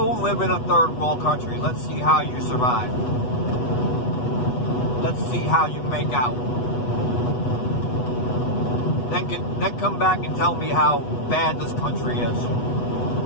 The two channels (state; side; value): late; right; 8.2 ms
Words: live in a third world country. Let's see how you survive. Let's see how you make out. Then come back and tell me how bad this country is.